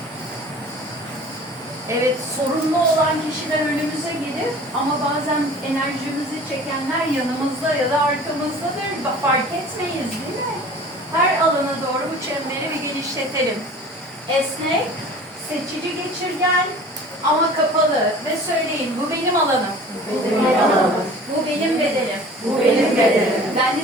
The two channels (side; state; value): both; normal; correlation 0.44